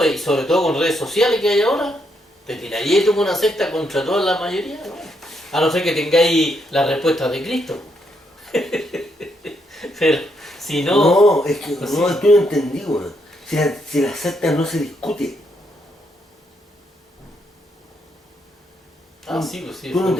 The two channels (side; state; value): both; normal; correlation 0.77